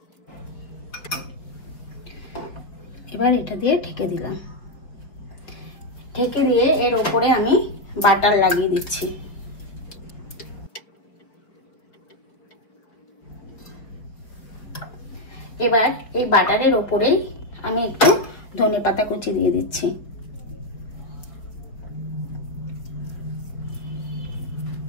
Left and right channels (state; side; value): late; right; 4.9 ms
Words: এবার এটা দিয়ে ঢেকে দিলাম। ঢেকে দিয়ে এর উপরে আমি বাটার লাগিয়ে দিচ্ছি। এবার এই বাটারের উপরেই আমি একটু ধনেপাতা কুচি দিয়ে দিচ্ছি।